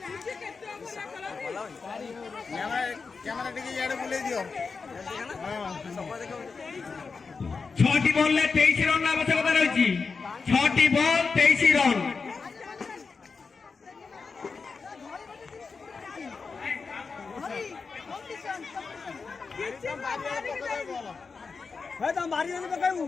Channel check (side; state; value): right; quieter; 4.8 dB